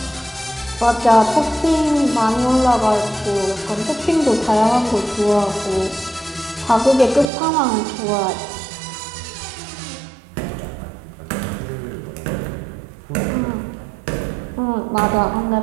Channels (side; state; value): left; drops out; at 7.2 s